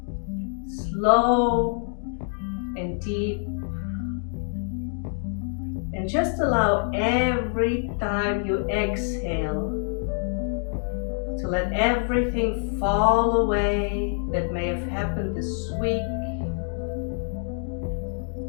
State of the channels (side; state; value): right; silent; 61 dB below the other